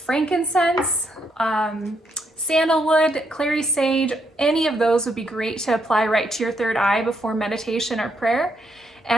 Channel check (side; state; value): both; normal; correlation 0.76